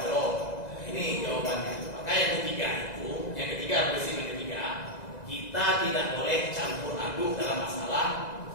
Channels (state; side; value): late; right; 1.9 ms